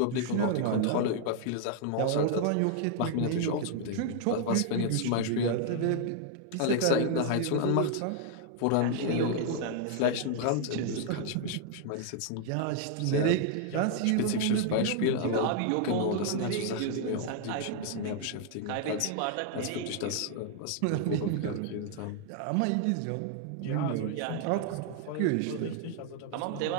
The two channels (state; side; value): different; both; correlation 0.00